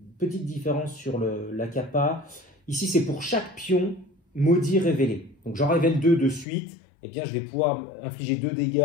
petite différence sur la capa. Ici c'est pour chaque pion maudit révélé. Donc j'en révèle 2 de suite. Eh bien, je vais pouvoir infliger 2 dégâts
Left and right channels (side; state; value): right; drops out; at 6.5 s